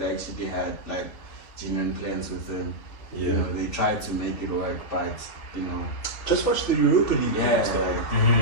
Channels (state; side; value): late; right; 3.5 ms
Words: actually had like genuine plans with him. Yeah. They tried to make it work, but just watch the Europa League. yeah, stuff. it